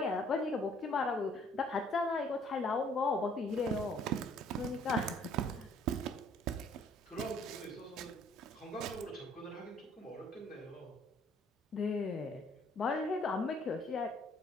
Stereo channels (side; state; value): both; normal; correlation 0.60